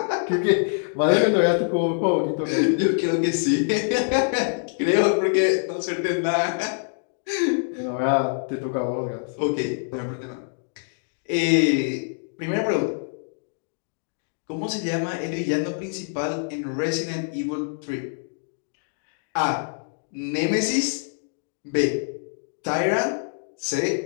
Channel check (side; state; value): right; silent; digital silence